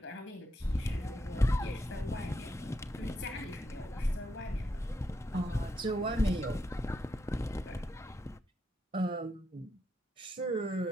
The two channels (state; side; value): normal; both; correlation 0.81